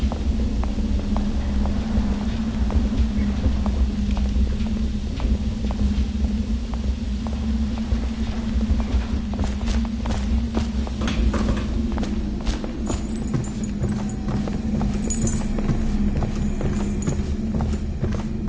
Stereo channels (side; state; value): both; identical; correlation 1.00